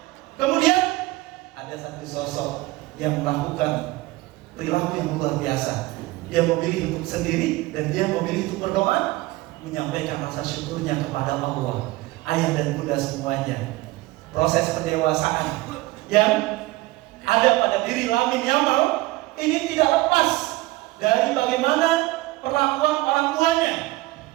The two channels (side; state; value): left; quieter; 19.5 dB